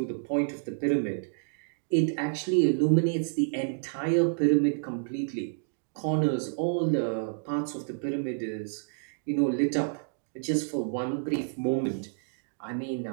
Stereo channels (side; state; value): left; silent; digital silence